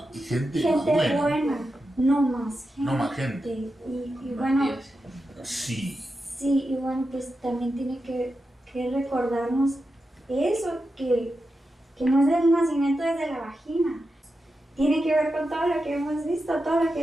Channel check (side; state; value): both; normal; correlation 0.89